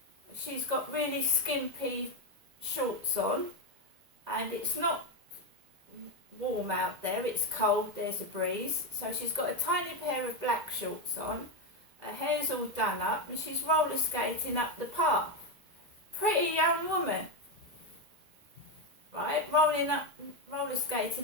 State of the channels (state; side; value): late; left; 2.0 ms